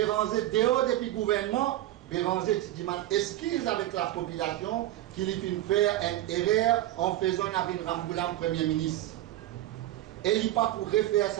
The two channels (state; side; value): quieter; left; 14.4 dB